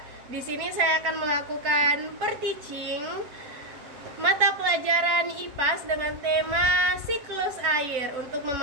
Di sini saya akan melakukan per-teaching mata pelajaran IPAS dengan tema siklus air untuk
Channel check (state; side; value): late; left; 7.0 ms